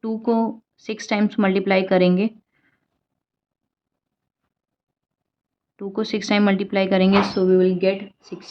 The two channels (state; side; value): identical; both; correlation 1.00